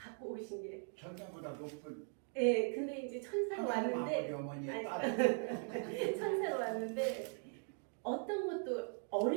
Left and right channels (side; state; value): left; silent; 51 dB below the other